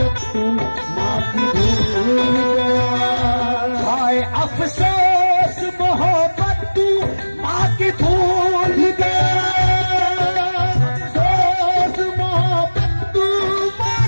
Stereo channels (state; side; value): inverted; both; correlation -1.00